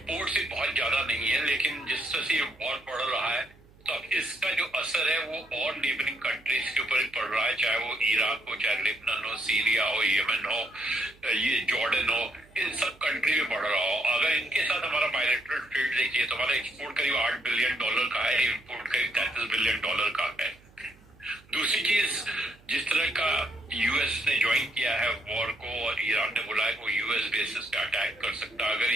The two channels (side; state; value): right; noise; hum, 27 dB below the sound